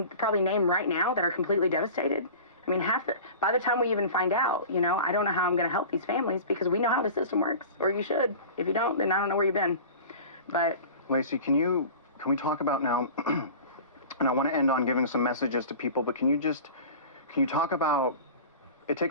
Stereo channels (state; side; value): inverted; both; correlation -0.37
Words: probably name right now that are completely devastated. I mean, by the time we even find out, you know, I don't know how I'm going to help these families because we know how the system works, or you should. If you don't, then I don't know where you've been. But Lacey, can we talk about now, and I want to end on giving some messages to people, but can you talk about, it